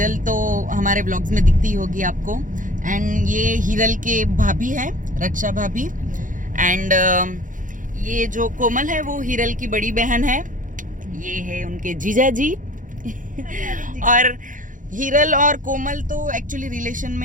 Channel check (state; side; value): late; left; 0.38 ms